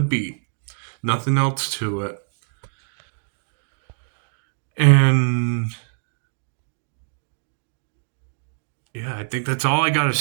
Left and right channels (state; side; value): silent; left; digital silence